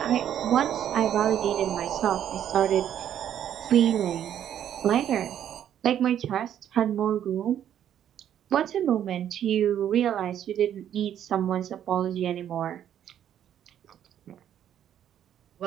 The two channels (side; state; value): left; quieter; 10.2 dB